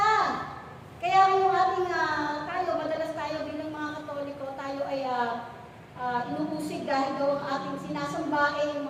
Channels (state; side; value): identical; both; correlation 1.00